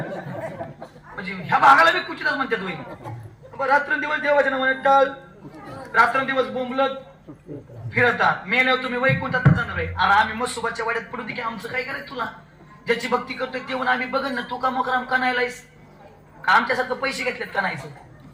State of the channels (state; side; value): identical; both; correlation 1.00